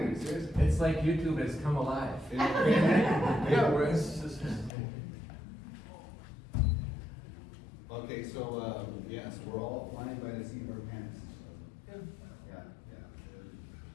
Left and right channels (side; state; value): right; drops out; at 4.7 s